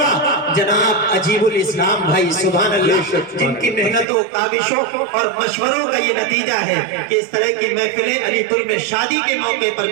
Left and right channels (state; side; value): drops out; left; at 4.0 s